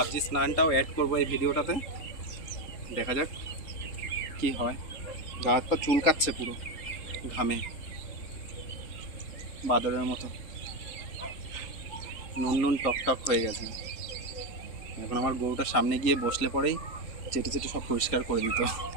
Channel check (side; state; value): right; late; 3.8 ms